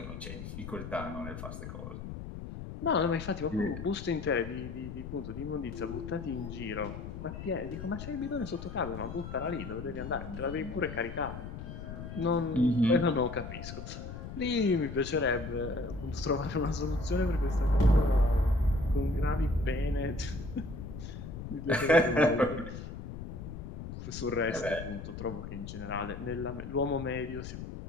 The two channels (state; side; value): noise; left; rumble, 9 dB below the sound